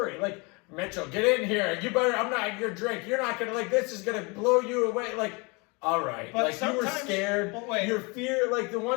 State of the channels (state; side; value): quieter; right; 28.7 dB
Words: Like, Mitchell, get in here. You better. I'm not your drink. You're not gonna like. This is gonna blow you away. Like, all right. But like you were sometimes- scared. but wait. Your fear, like the